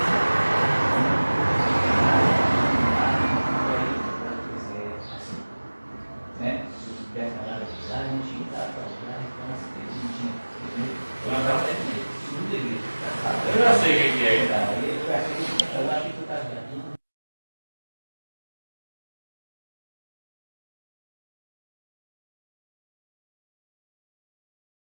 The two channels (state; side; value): inverted; both; correlation -1.00